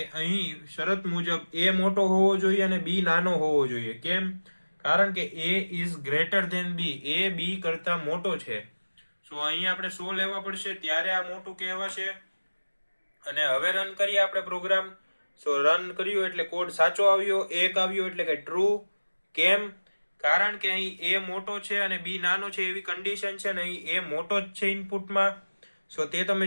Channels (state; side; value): inverted; both; correlation -1.00